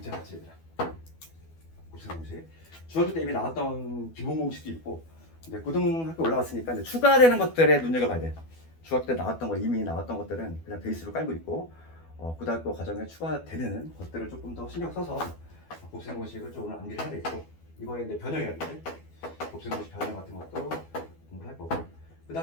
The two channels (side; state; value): right; late; 12 ms